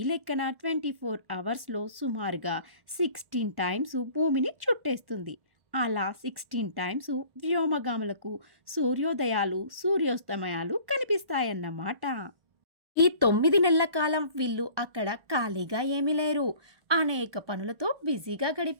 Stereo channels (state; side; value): late; left; 1.1 ms